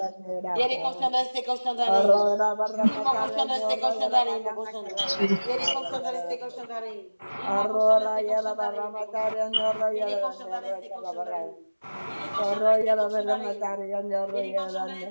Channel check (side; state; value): both; inverted; correlation -1.00